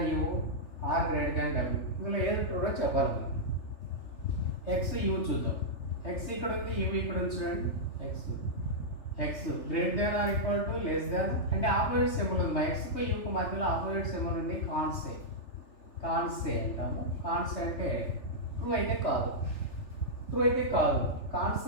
U, R greater than W. ఇందులో ఏది ట్రూగా చెప్పాలి మనం. ఎక్స్ యూ చూద్దాం. ఎక్స్ ఇక్కడ ఉంది, యూ ఇక్కడ ఉంది చూడండి. X greater than or equal to less than అంటే ఆపోజిట్ సింబల్ ఉంది. మా ఎక్స్కు యూకు మధ్యలో ఆపోజిట్ సింబల్ ఉంది. కాన్సే అంటాము. కాన్సే అంటే ట్రూ అయితే కాదు,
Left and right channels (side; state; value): right; late; 3.4 ms